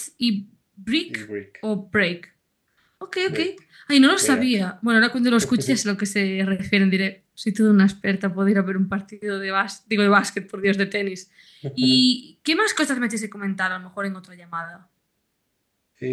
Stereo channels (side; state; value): both; identical; correlation 1.00